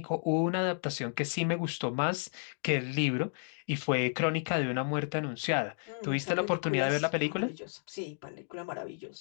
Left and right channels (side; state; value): right; silent; digital silence